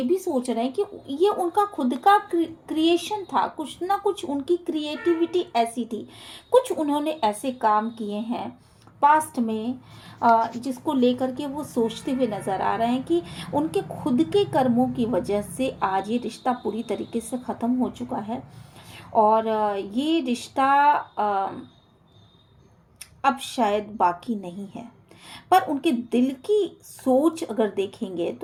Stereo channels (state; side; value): identical; both; correlation 1.00